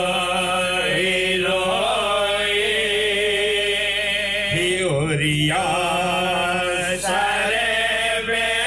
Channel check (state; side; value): noise; left; hum, 18 dB below the sound